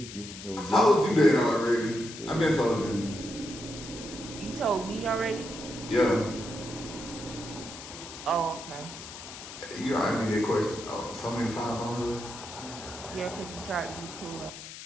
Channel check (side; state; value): left; noise; hiss, 12 dB below the sound